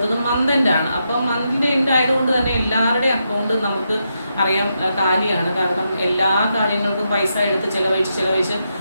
മന്ത് എൻഡ് ആണ്. അപ്പം മന്തിൻ്റെ എൻഡ് ആയതുകൊണ്ട് തന്നെ എല്ലാവരുടെയും അക്കൗണ്ട് നമുക്ക് അറിയാം കാലിയാണ്. കാരണം എല്ലാ കാര്യങ്ങൾക്കും പൈസ എടുത്ത് ചിലവഴിച്ച്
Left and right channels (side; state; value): both; inverted; correlation -0.83